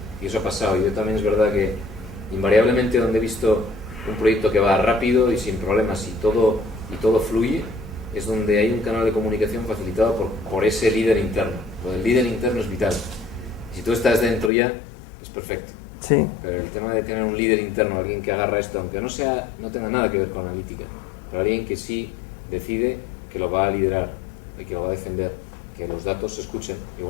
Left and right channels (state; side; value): drops out; right; at 14.5 s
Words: Y eso ha pasado. Yo también es verdad que invariablemente donde he visto un proyecto que va rápido y sin problemas y todo fluye, es donde hay un canal de comunicación facilitado por ese líder interno. Lo del líder interno es vital. Si tú estás dentro ya, es perfecto. Sí. Pero el tema de tener un líder interno, alguien que agarra esto, aunque no tenga nada que ver con analítica, pero alguien que sí decide que lo va a liderar y que lo va a defender, que los datos se escuchen,